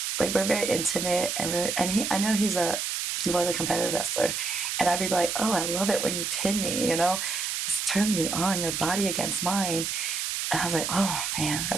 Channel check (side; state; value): right; noise; hiss, 2 dB below the sound